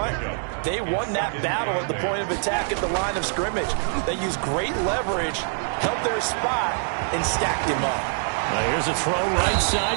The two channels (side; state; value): left; silent; 62 dB below the other